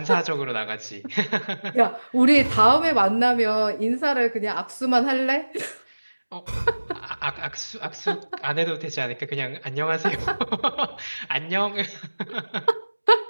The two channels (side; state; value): both; inverted; correlation -1.00